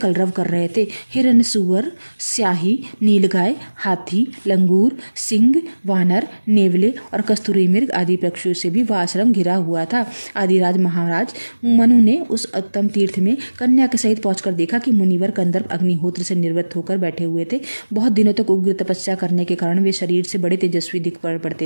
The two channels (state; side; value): inverted; both; correlation -1.00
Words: कर रहे थे। हिरण, सुअर, स्याही, नीलगाय, हाथी, लंगूर, सिंह, वानर, नेवले और कस्तूरी मृग आदि पक्षियों से भी वह आश्रम घिरा हुआ था। आदिराज महाराज मनु ने उस उत्तम तीर्थ में कन्या के सहित पहुंचकर देखा कि मुनिवर कंदर्प अग्निहोत्र से निवृत्त होकर बैठे हुए थे। बहुत दिनों तक उग्र तपस्या करने के कारण वे शरीर से बड़े तेजस्वी दिख